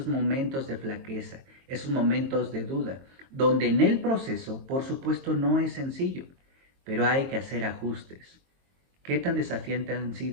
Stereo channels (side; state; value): left; late; 22 ms